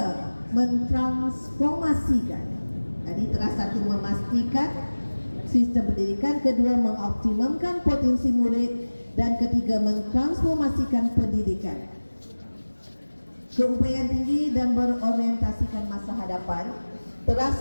mentransformasikan. Jadi teras satu memastikan sistem pendidikan, kedua mengoptimalkan potensi murid, dan ketiga mentransformasikan pendidikan. Keupayaan tinggi dan berorientasikan masa hadapan.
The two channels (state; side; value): inverted; both; correlation -1.00